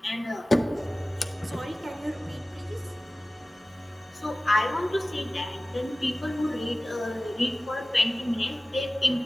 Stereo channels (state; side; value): normal; both; correlation 0.97